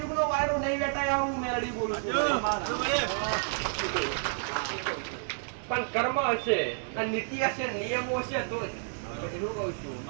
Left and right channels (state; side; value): silent; left; digital silence